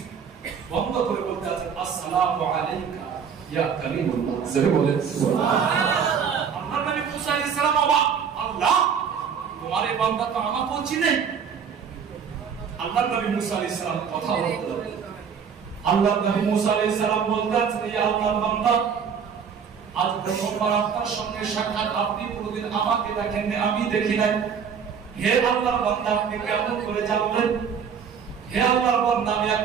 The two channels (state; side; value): quieter; left; 7.0 dB